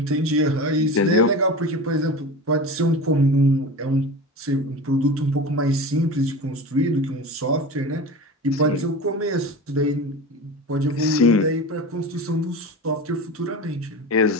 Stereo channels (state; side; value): normal; both; correlation 0.30